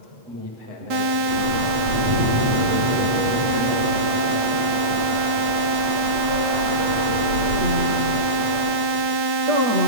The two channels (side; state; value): left; late; 8.3 ms